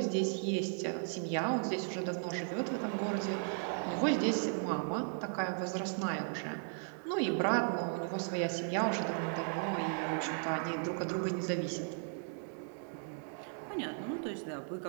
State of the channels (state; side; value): silent; left; 54 dB below the other